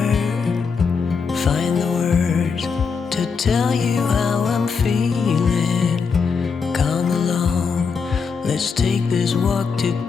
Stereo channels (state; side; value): quieter; right; 5.5 dB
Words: find the words to tell you how I'm feeling. Come along, let's take this walk